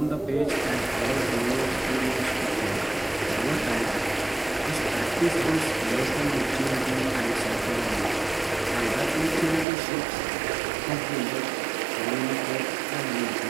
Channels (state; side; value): drops out; left; at 9.7 s